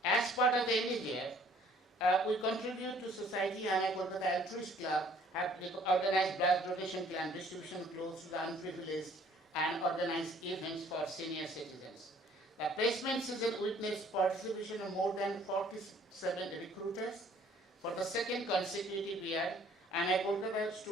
As part of the endeavor, we contribute to Society IMI Kolkata Altruist Club, have organized blood donation camp, distribution clothes to the unprivileged, and organized events for senior citizens. The placement season witnessed participation of more than 47 recruiters. For the second consecutive year, IMI Kolkata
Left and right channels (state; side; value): normal; both; correlation 0.58